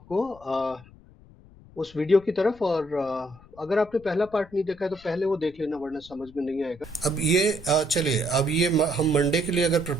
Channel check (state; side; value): noise; left; rumble, 23 dB below the sound